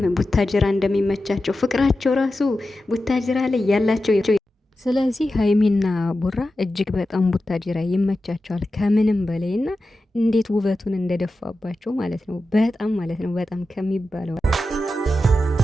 ቡታጅራ እንደሚመቻቸው ፍቅራቸው ራሱ ቡታጅራ ላይ ያላቸው። ስለዚህ ሀይሚና ቡራ እጅግ በጣም ቡታጅራ ይመቻቸዋል ከምንም በላይ እና እንዴት ውበቱን እንደደፋባቸው ማለት ነው። በጣም ማለት ነው በጣም ከሚባለው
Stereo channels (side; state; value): both; normal; correlation 0.92